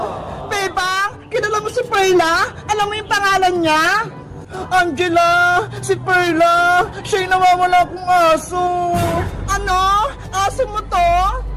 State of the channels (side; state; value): both; identical; correlation 1.00